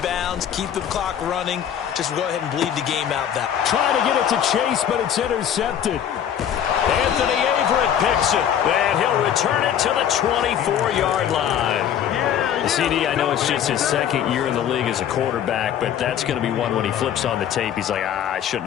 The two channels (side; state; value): right; quieter; 9.5 dB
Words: keep the clock running. Just go ahead and bleed the game out that. Trying to get it to Chase, but it's intercepted. Anthony Averett picks it, and he'll return it to the 24-yard line. CD, I know it's just his 2nd year in the league as a quarterback, but that's going to be one when he flips on the tape. He's like, I shouldn't